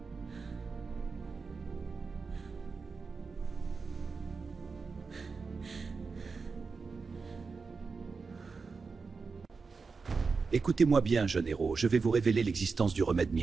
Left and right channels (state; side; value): quieter; left; 4.7 dB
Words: Écoutez-moi bien, jeune héros, je vais vous révéler l'existence du remède